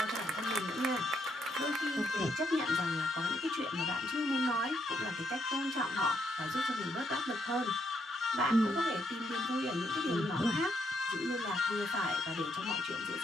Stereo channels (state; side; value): normal; both; correlation 0.76